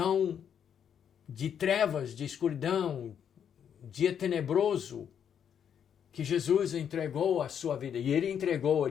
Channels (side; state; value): right; quieter; 8.4 dB